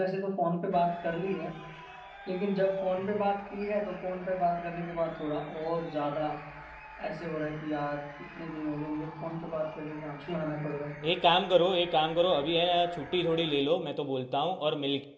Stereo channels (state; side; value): identical; both; correlation 1.00